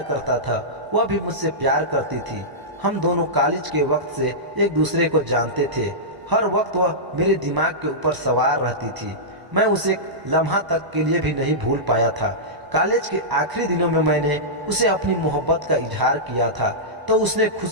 करता था, वह भी मुझसे प्यार करती थी। हम दोनों कॉलेज के वक्त से एक दूसरे को जानते थे। हर वक्त वह मेरे दिमाग के ऊपर सवार रहती थी। मैं उसे एक लम्हा तक के लिए भी नहीं भूल पाया था। कॉलेज के आखिरी दिनों में मैंने उसे अपनी मोहब्बत का इजहार किया था तो उसने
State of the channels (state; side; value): late; left; 1.0 ms